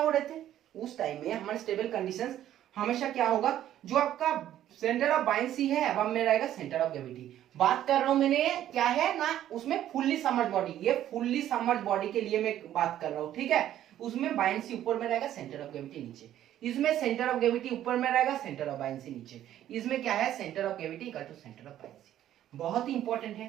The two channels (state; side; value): quieter; left; 12.0 dB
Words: रहे थे, उस टाइम में हमारे स्टेबल कंडीशंस हमेशा क्या होगा, जो आपका सेंटर ऑफ बायंसी है अब में रहेगा सेंटर ऑफ ग्रेविटी। बात कर रहा हूं मैंने क्या है ना, उसमें फुल्ली समर्ज बॉडी, ये फुल्ली समर्ज बॉडी के लिए मैं बात कर रहा हूं। ठीक है, उसमें बायंसी ऊपर में रहेगा, सेंटर ऑफ ग्रेविटी नीचे, इसमें सेंटर ऑफ ग्रेविटी ऊपर में रहेगा, सेंटर ऑफ बायंसी नीचे, इसमें क्या है, centre of gravity equal to centre of buoyancy. बहुत ही इंपॉर्टेंट